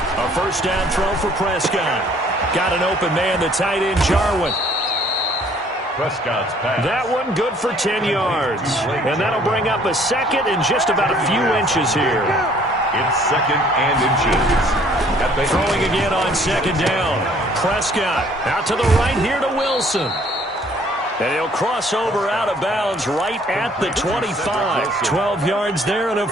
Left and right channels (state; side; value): normal; both; correlation 0.59